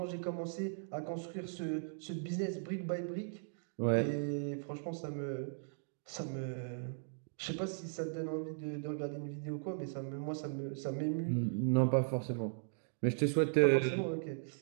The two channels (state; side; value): silent; left; digital silence